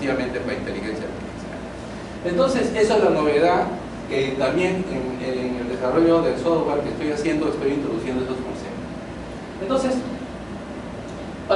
para inteligencia artificial. Entonces, esa es la novedad, que también en el desarrollo del software que estoy haciendo, estoy introduciendo esos conceptos. Entonces,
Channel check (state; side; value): identical; both; correlation 1.00